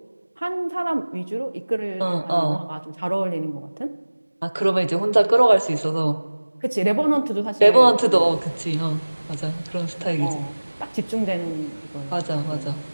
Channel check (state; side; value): inverted; both; correlation -1.00